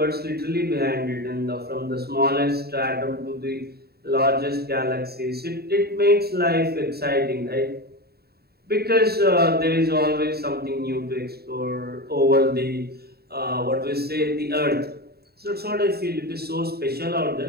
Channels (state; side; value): late; left; 0.46 ms